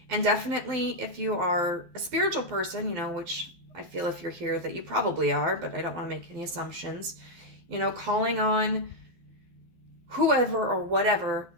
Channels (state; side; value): late; left; 12 ms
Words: And definitely, if you are a spiritual person, which I feel if you're here that you probably are, but I don't want to make any assumptions, calling on whoever or whatever